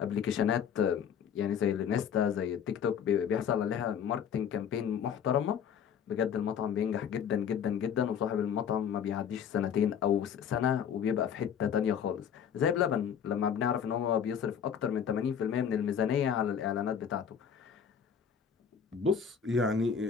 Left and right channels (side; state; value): right; quieter; 7.9 dB